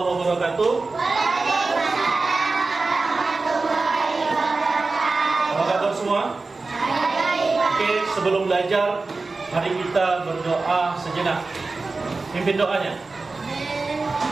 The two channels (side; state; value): left; quieter; 3.7 dB